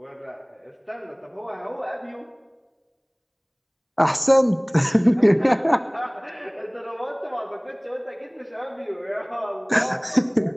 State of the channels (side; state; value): both; identical; correlation 1.00